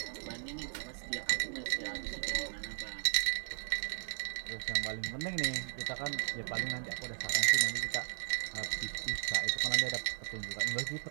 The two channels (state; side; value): silent; left; digital silence